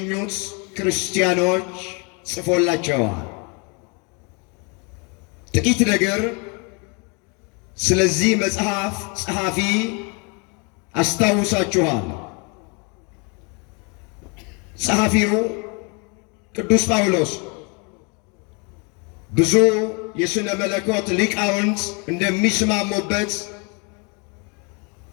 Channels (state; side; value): quieter; right; 32.9 dB